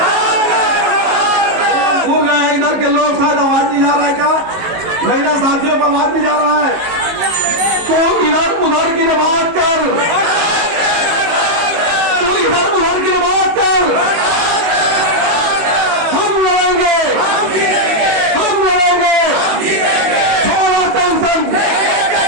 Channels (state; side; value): late; left; 19 ms